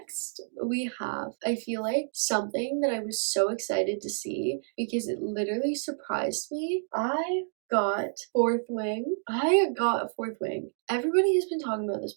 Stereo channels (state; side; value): silent; left; digital silence